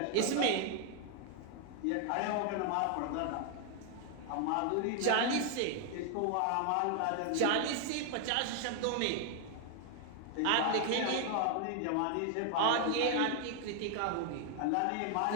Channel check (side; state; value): both; different; correlation 0.00